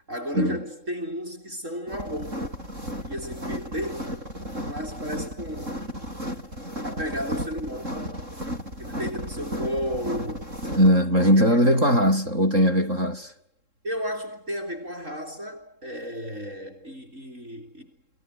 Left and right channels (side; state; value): left; late; 3.7 ms